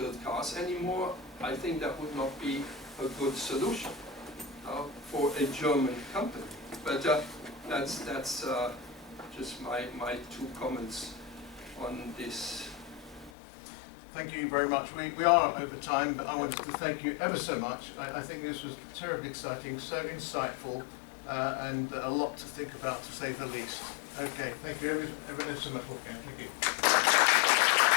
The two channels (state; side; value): drops out; right; at 13.3 s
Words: cars anymore. I think that would not be a good solution for a German company. But that's just my 2 comments on this. Thank you very much. We are over time, but I wanted to thank you ever so much. I think this was terribly exciting, so insightful, and a lot to think about, to say the least. Okay, thank you ever so much, Wolfgang. Thank you.